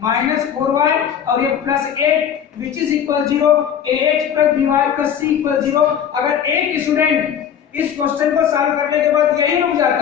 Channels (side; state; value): right; quieter; 8.7 dB